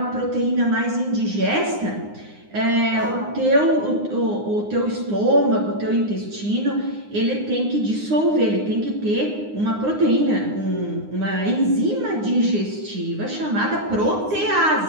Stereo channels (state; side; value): late; left; 9.7 ms